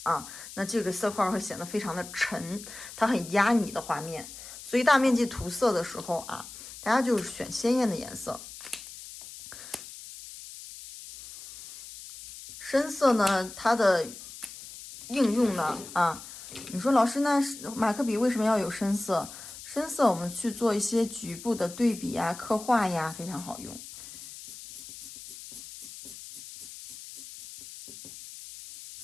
啊。那这个色块会显得非常的沉，它很压你的画面。所以大面积涂色的时候啊，大家就是选鲜艳的颜色。深色呢，它的应用呢啊，你说老师，那马克笔为什么要有深色？深色我们去做一些局部的对比呀、刻画呀，非常好用。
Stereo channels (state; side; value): noise; left; hiss, 14 dB below the sound